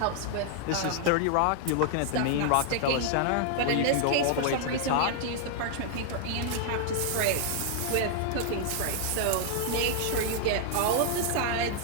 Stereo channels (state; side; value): different; both; correlation 0.00